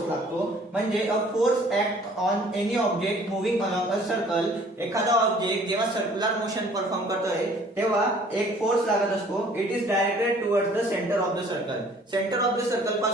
लागतो. म्हणजे a force act on any object moving along a circle. एखादा ऑब्जेक्ट जेव्हा सर्क्युलर मोशन परफॉर्म करतोय तेव्हा एक फोर्स लागत असतो. It is directed towards the centre of the circle. Centre of the circle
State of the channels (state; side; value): normal; both; correlation 0.55